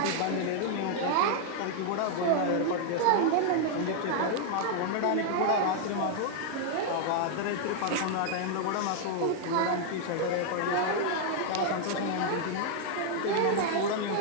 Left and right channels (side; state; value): both; different; correlation 0.00